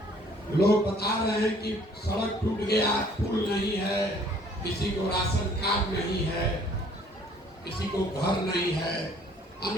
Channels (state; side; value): normal; both; correlation 0.58